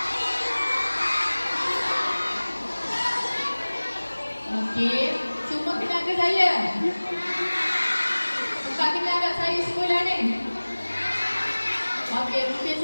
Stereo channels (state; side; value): inverted; both; correlation -1.00